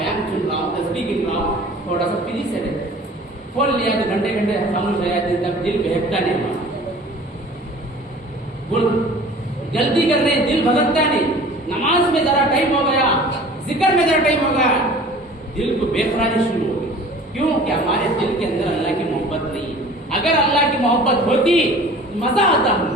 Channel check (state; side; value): normal; both; correlation 0.45